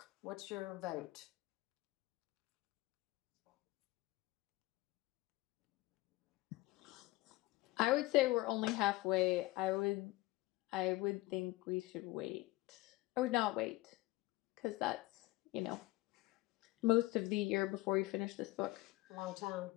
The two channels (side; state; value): right; quieter; 19.6 dB